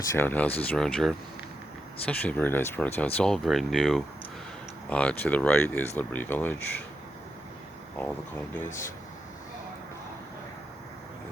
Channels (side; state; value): both; normal; correlation 0.85